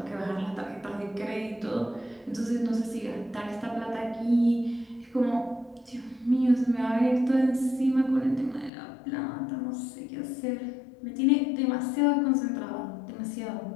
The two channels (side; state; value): right; drops out; at 8.7 s